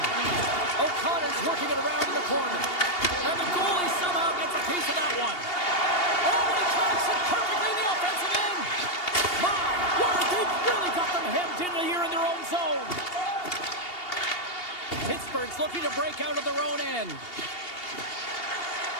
O'Connor's working it around in the corner. And the goalie somehow gets a piece of that one. Oh, and he tracks it perfectly in the offensive end. My word, they've really got them hemmed in here in their own zone. Pittsburgh's looking to break out of their own end.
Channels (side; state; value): right; late; 2.8 ms